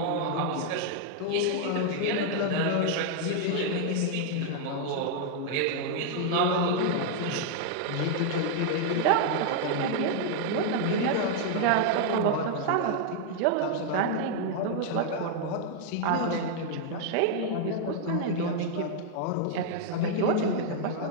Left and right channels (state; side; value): different; both; correlation 0.00